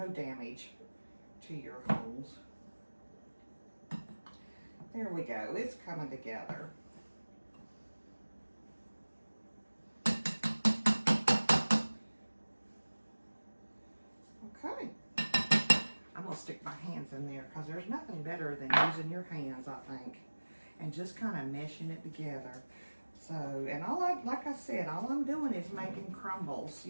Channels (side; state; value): both; inverted; correlation -1.00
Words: damage to your homes. There we go, it's coming together. Okay. I'm gonna stick my hands in there because there's nothing better than using your hands, I think, and just kind of meshing it together. So, and like I said, all I'm doing is making crumbles.